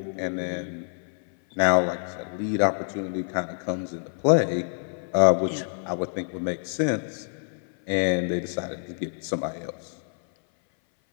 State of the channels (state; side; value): silent; right; 57 dB below the other